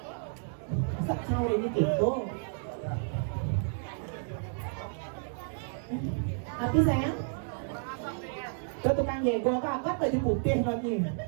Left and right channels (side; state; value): left; silent; digital silence